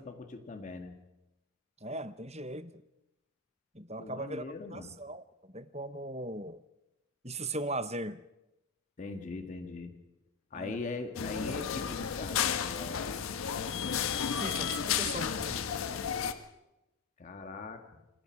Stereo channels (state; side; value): quieter; right; 4.6 dB